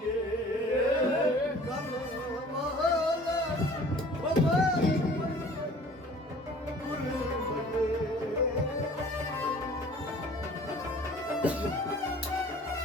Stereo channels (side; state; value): both; normal; correlation 0.49